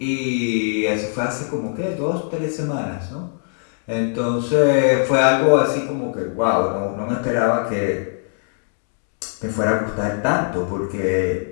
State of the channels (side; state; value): right; silent; digital silence